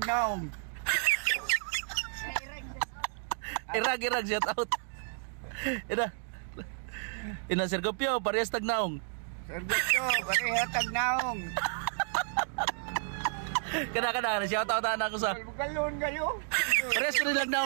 Irag shout out. Ina Sir Gopyo, parehas tagnaong. Sir Gopyo, pareho tagnaong. Kada shout out na ako sa. Galon kayo. Parehas ko nilang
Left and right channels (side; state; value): left; silent; 57 dB below the other